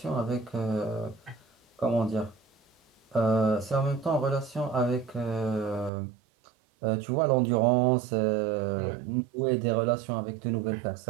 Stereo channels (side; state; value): left; drops out; at 5.9 s